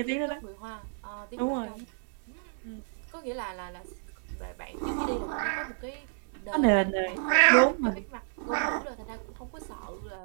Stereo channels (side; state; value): left; silent; digital silence